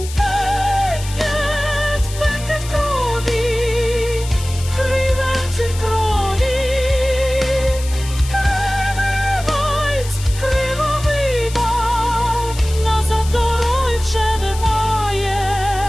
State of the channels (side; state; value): left; noise; hiss, 13 dB below the sound